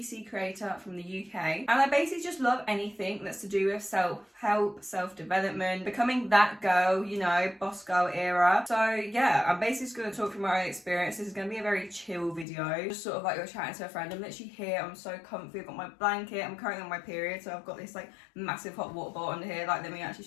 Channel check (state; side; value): drops out; right; at 12.5 s